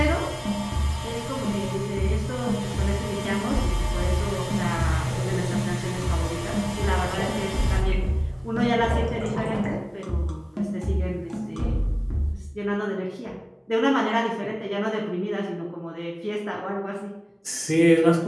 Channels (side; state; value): both; identical; correlation 1.00